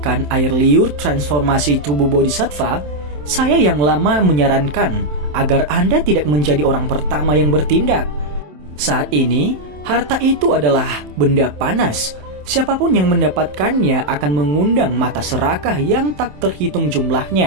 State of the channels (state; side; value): late; left; 27 ms